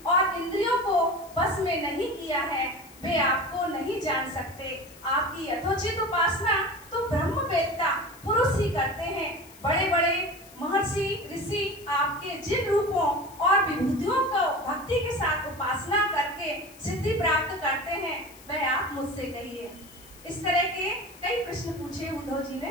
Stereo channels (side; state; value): left; noise; hiss, 22 dB below the sound